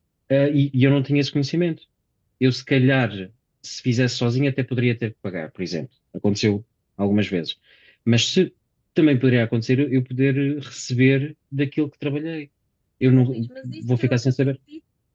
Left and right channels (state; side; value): identical; both; correlation 1.00